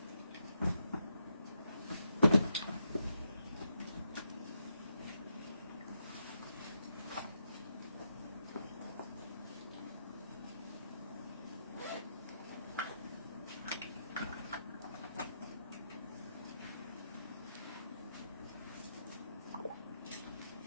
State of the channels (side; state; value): both; inverted; correlation -0.81